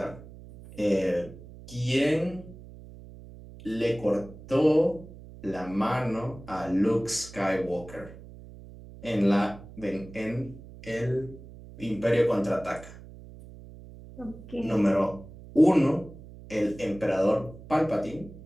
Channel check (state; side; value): noise; right; hum, 17 dB below the sound